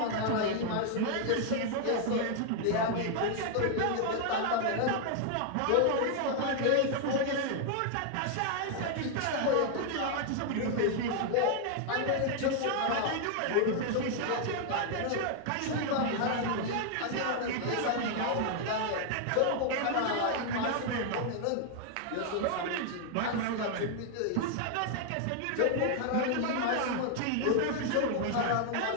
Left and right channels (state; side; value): different; both; correlation 0.00